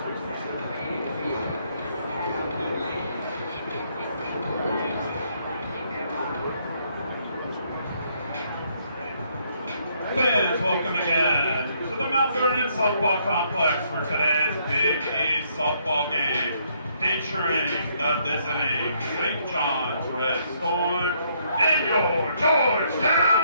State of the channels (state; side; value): inverted; both; correlation -0.70